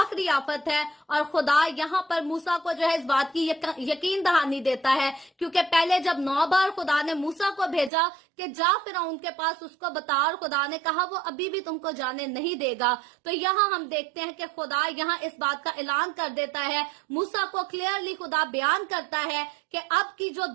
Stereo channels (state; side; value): drops out; left; at 7.9 s